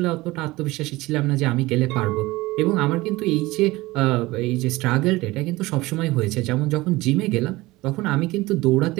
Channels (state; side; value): quieter; left; 19.9 dB